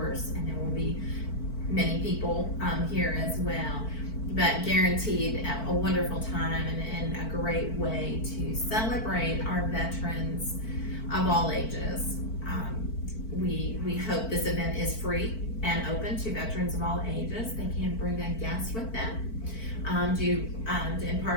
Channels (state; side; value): late; right; 4.5 ms